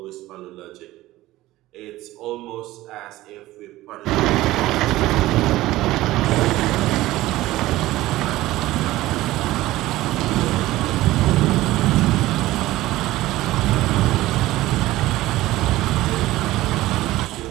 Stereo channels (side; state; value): left; quieter; 16.8 dB